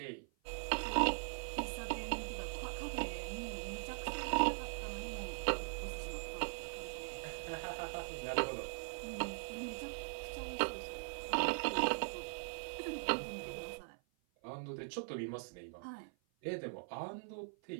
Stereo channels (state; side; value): silent; left; 50 dB below the other